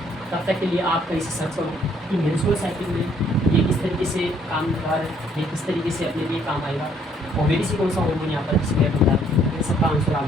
तब तक के लिए आप कहीं से सर्च करो कि मेंस्ट्रुअल साइकिल में ये किस तरीके से काम कर रहा है, ये किस तरीके से अपने लिए काम आएगा, ओवेरी से कौन सा हार्मोन यहाँ पर डिस्प्ले होता है, इन सबका आंसर आप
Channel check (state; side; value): normal; both; correlation 0.65